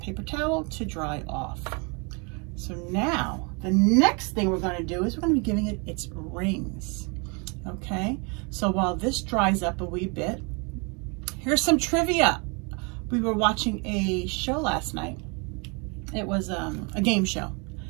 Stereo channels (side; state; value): left; quieter; 32.5 dB